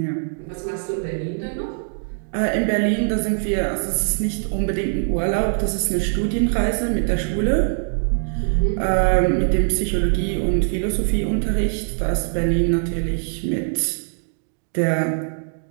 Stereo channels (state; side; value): silent; left; digital silence